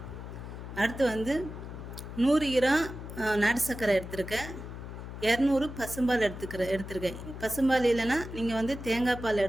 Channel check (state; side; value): noise; left; hum, 10 dB below the sound